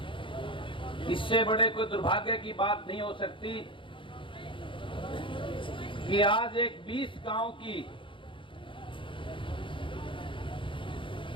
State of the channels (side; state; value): right; late; 0.25 ms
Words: इससे बड़े कोई दुर्भाग्य की बात नहीं हो सकती कि आज एक 20 गांव की